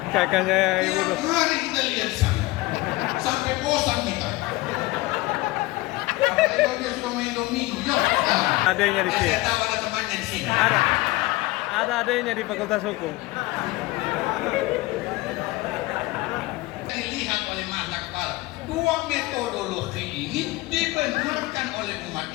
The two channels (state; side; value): quieter; right; 20.5 dB